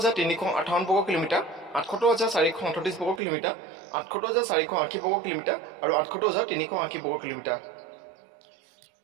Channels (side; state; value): left; drops out; at 3.2 s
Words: বৰ্গ কিলোমিটাৰ, ৭৮,৪৩৮ বৰ্গ কিলোমিটাৰ, ৭৮,৪৮০ বৰ্গ কিলোমিটাৰ আৰু ৭৮,৩৮০ বৰ্গ কিলোমিটাৰ।